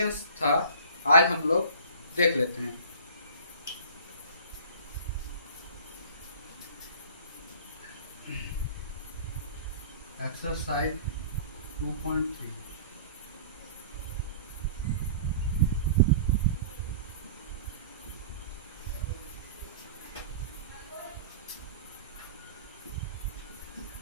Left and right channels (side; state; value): both; inverted; correlation -0.43